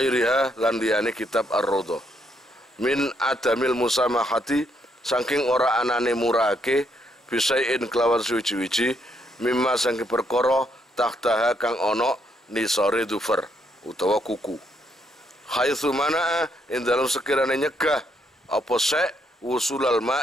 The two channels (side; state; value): both; normal; correlation 0.74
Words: lan liyane kitab Ar-Raudhah. Min adamil musamahati saking ora anane murake bisain kelawan suwi-wiji mimma saking perkara tahtaha kang ana nisore dhufar utawa kuku. Haitsu mana ing dalam sekirane nyegah apa sek wusulal